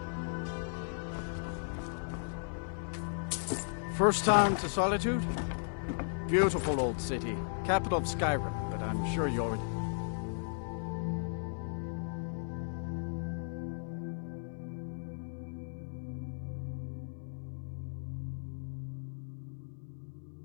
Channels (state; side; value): silent; right; 54 dB below the other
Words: First time to Solitude? Beautiful old city. Capital of Skyrim, but I'm sure you already...